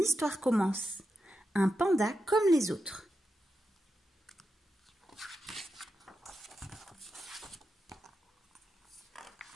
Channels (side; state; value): both; normal; correlation 0.88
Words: commence. Un panda comme les autres.